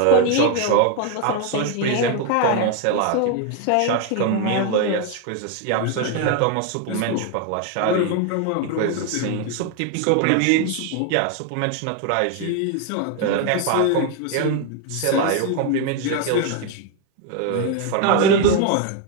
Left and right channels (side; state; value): both; different; correlation 0.01